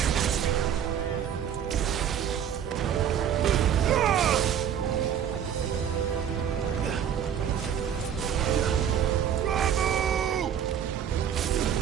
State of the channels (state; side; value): quieter; left; 8.9 dB